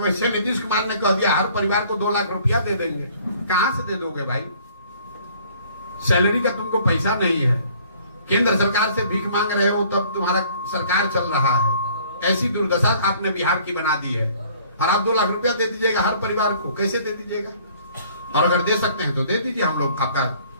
नीतीश कुमार ने कह दिया हर परिवार को 2 लाख रुपया दे देंगे। कहां से दे दोगे भाई? सैलरी का तुमको पैसा नहीं है, केंद्र सरकार से भीख मांग रहे हो, तब तुम्हारा सरकार चल रहा है। ऐसी दुर्दशा आपने बिहार की बना दी है। और आप 2 लाख रुपया दे दीजिएगा हर परिवार को, कैसे दे दीजिएगा? और अगर दे सकते हैं तो दे दीजिए, हम लोग आपका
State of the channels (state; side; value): inverted; both; correlation -0.57